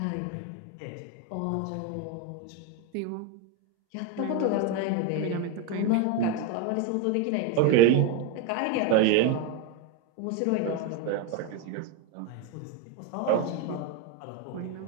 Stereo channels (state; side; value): different; both; correlation 0.02